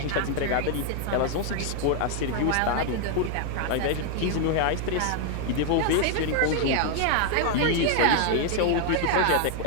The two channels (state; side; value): different; both; correlation 0.00